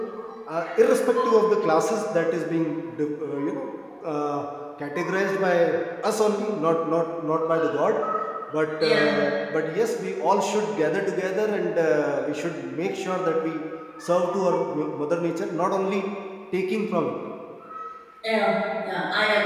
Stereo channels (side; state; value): both; identical; correlation 1.00